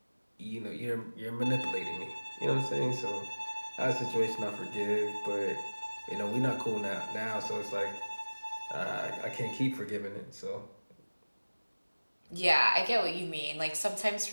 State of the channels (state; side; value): inverted; both; correlation -1.00